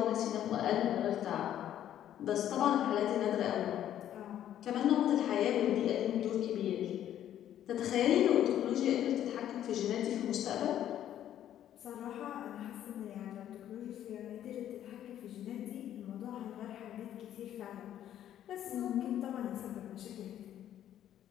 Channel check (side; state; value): right; quieter; 11.2 dB